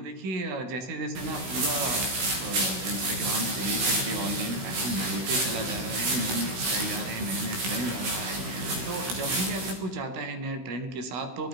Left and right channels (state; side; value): late; left; 16 ms